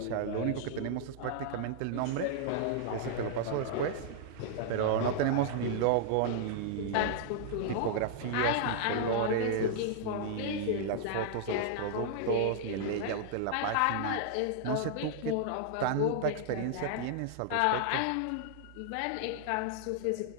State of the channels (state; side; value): different; both; correlation -0.01